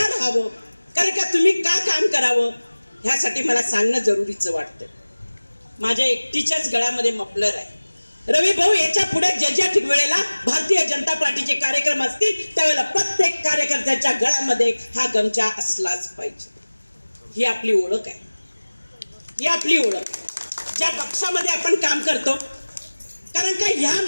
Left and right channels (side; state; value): both; inverted; correlation -1.00